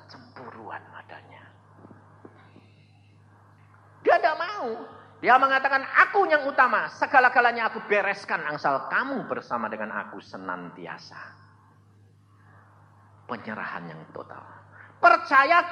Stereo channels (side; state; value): both; identical; correlation 1.00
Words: cemburuan adanya. Dia tidak mau. Dia mengatakan, aku yang utama. Segala-galanya aku bereskan. Asal kamu bersama dengan aku senantiasa. Penyerahan yang total.